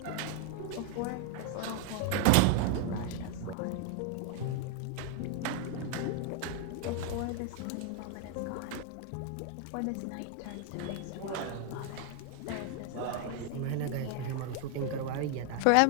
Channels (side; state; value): both; different; correlation 0.00